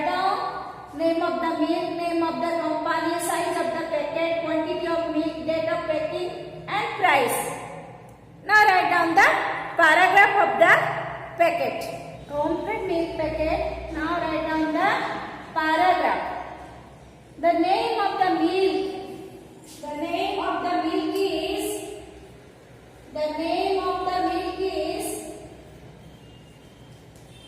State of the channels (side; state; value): both; identical; correlation 1.00